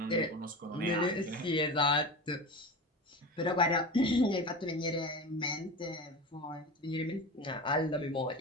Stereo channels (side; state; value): both; normal; correlation 0.28